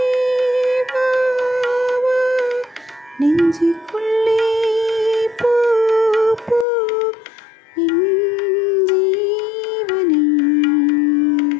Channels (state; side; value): drops out; right; at 6.7 s